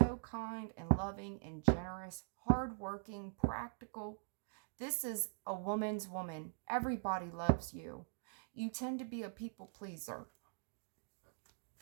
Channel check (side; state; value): left; silent; digital silence